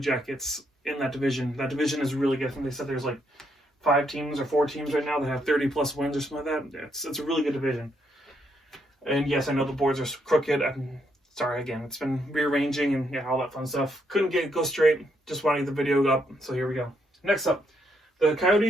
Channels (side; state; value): both; normal; correlation 0.76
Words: in that division. That division is really good. I think they said there's like 5 teams or 4 teams right now that have 30-plus wins or something like that. It's a really good division. And yes, I know the boards are crooked. I'm sorry, again, it's been rearranging and all that fun stuff. Couldn't go straight. Just wanted the video up, so here we go. Next up, the